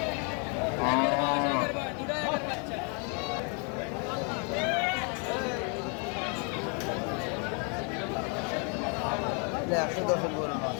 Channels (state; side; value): quieter; right; 36.9 dB